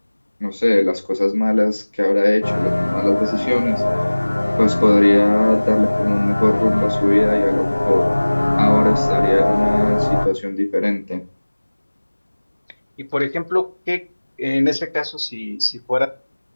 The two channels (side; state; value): both; inverted; correlation -1.00